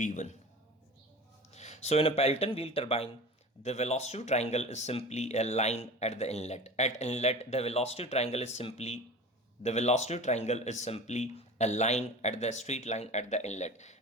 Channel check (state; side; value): normal; both; correlation 0.36